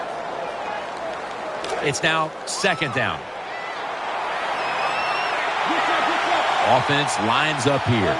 It's now 2nd down. Offense lines up here.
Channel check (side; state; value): both; identical; correlation 1.00